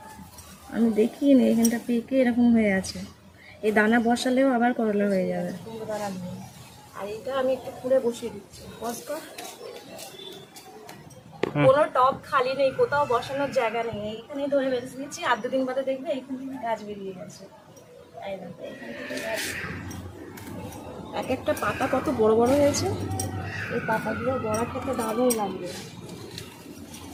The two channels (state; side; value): identical; both; correlation 1.00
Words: দেখিনি এখানটা পেকে এরকম হয়ে আছে। এই দানা বসালেও আবার করলা হয়ে যাবে। আর এটা আমি একটু খুঁড়ে বসিয়ে দিচ্ছি। কোনো টব খালি নেই, কোথাও বসানোর জায়গা নেই, এইখানেই ধরে বেঁধে দিচ্ছি। আর 2 দিন বাদে দেখবে এইখান থেকে গাছ বেরিয়ে গেছে। এক একটা পাতা কত বড় বড় হয়েছে। এই পাতাগুলো বড়া খেতে দারুণ লাগবে।